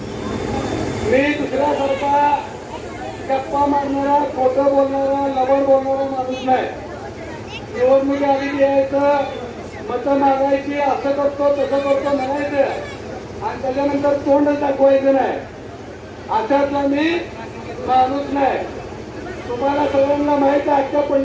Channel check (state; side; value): identical; both; correlation 1.00